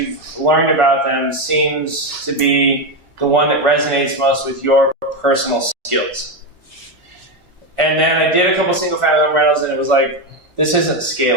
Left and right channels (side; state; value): left; late; 1.4 ms